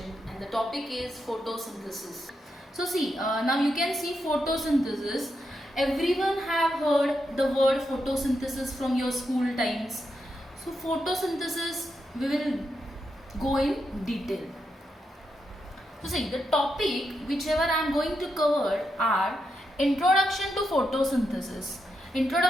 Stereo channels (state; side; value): normal; both; correlation 0.84